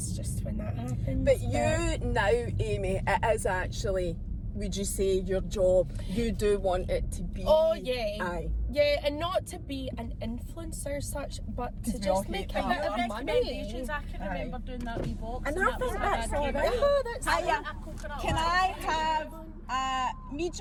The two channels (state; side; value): identical; both; correlation 1.00